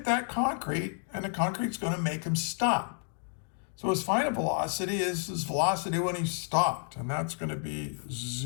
that concrete, and the concrete's going to make him stop. So his final velocity is his velocity when he stopped, and that's going to be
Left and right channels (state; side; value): silent; right; 56 dB below the other